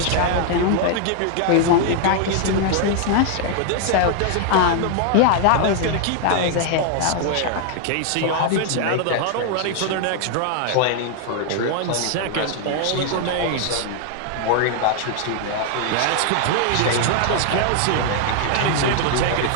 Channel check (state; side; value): different; both; correlation 0.00